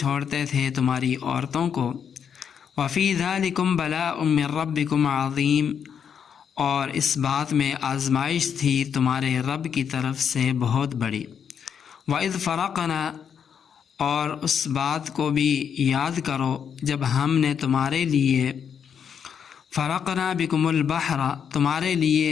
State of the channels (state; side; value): quieter; right; 7.6 dB